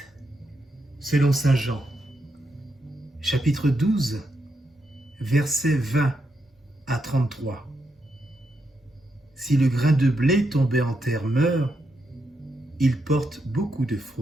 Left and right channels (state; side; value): normal; both; correlation 0.82